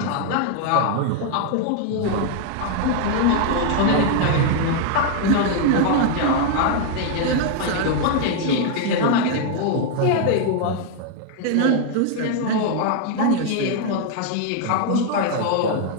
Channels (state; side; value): different; both; correlation 0.00